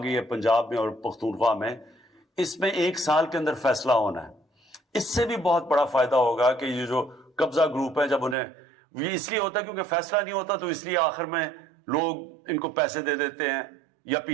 ہے پنجاب میں اور پختونخوا میں، اس میں 1 سال کے اندر فیصلہ ہونا ہے. اس سے بھی بہت بڑا فائدہ ہوگا کہ یہ جو قبضہ گروپ ہیں، جب انہیں یہ اس لیے ہوتا ہے کیونکہ فیصلہ نہیں ہوتا، تو اس لیے آخر میں لوگ ان کو پیسے دے دیتے ہیں یا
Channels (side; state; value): left; drops out; at 8.3 s